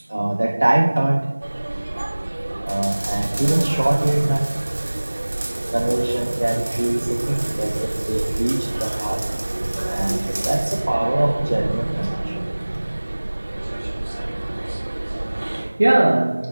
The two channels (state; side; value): inverted; both; correlation -1.00